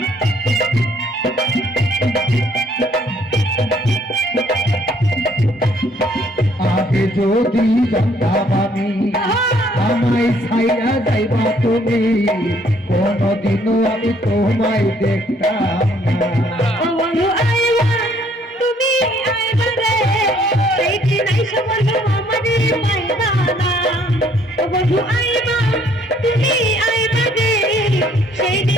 আগে যদি জানতাম আমি আমায় ছাইয়া যাইবা তুমি, কোনদিনও আমি তোমায় দেখতাম না। ও বন্ধু আইবা তুমি আইবা রে, সেই দিন আইসা বন্ধু আমারে পাইবা না। ও বন্ধু আইবা তুমি আইবা রে, সেই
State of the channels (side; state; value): both; normal; correlation 0.64